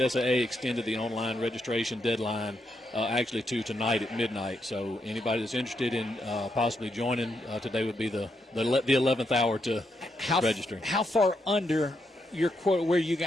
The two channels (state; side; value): normal; both; correlation 0.80